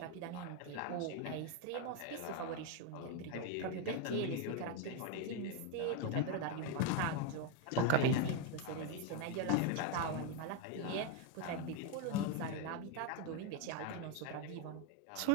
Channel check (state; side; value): different; both; correlation 0.02